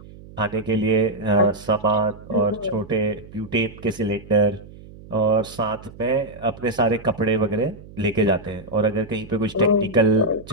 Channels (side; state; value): right; noise; hum, 19 dB below the sound